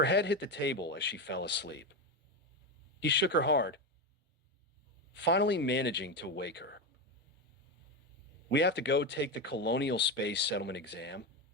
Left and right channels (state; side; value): normal; both; correlation 0.14